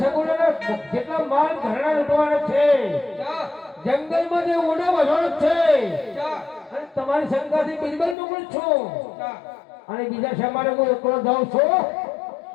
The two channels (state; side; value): drops out; right; at 8.2 s